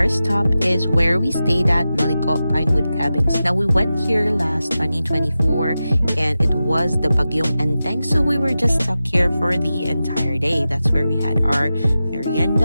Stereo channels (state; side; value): inverted; both; correlation -0.93